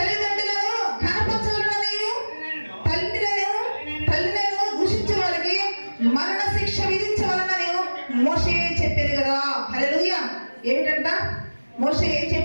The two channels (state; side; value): inverted; both; correlation -1.00